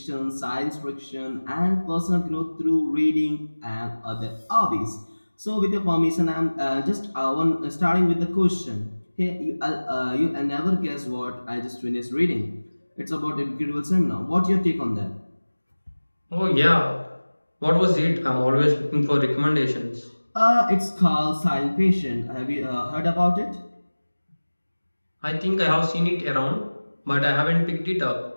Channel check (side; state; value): both; inverted; correlation -1.00